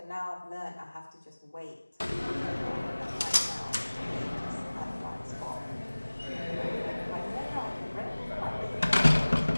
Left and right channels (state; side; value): inverted; both; correlation -1.00